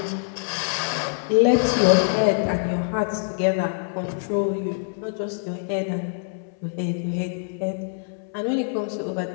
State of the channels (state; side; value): silent; right; 61 dB below the other